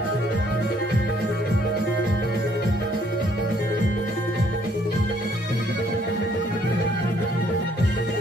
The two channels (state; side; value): normal; both; correlation 0.65